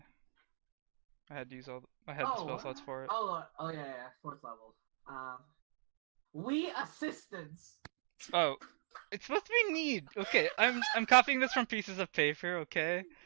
I had to use all. I had the spell slots for it. Oh yeah, fourth level. We assistants. Oh, it's supposed to be need. Okay, I'm copying this from pieces of paper. Okay.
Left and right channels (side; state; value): left; silent; 51 dB below the other